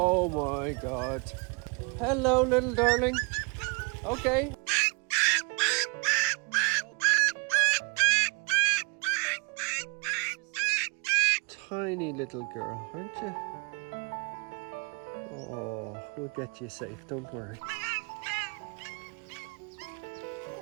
my God. Hello, little darling. Okay. Tiny little girl, aren't you? Oh, we'll get you safe, don't worry.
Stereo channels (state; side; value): quieter; left; 32.3 dB